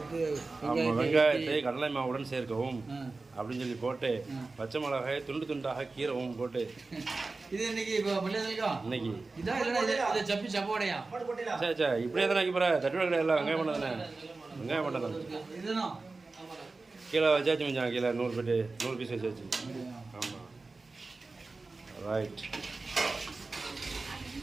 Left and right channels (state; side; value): quieter; left; 3.6 dB